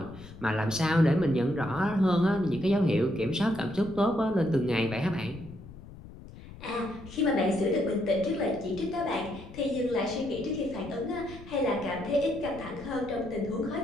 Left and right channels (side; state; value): left; noise; rumble, 16 dB below the sound